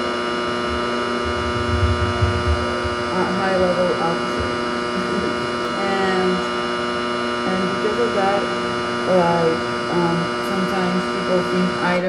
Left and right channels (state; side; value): identical; both; correlation 1.00